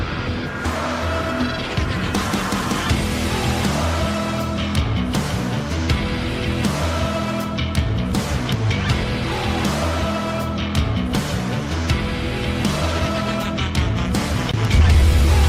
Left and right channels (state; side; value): identical; both; correlation 1.00